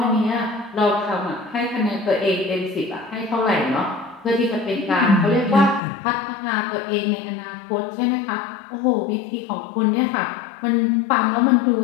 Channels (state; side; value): drops out; right; at 5.8 s